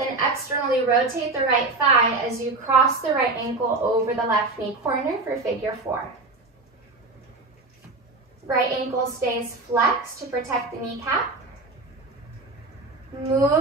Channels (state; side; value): quieter; left; 3.4 dB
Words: externally rotate the right thigh as you cross the right ankle over the left knee corner for figure 4. Right ankle stays flexed to protect the kneecap.